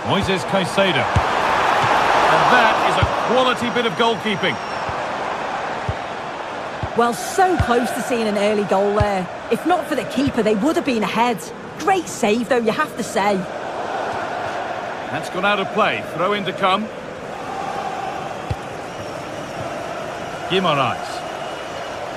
Moises Caicedo. And that is a quality bit of goalkeeping. Well, so close to seeing an early goal there. If not for the keeper, they would have been ahead. Great save, though, you have to say. That's gone out of play. Throw in to come. Guimaraes.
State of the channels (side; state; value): both; identical; correlation 1.00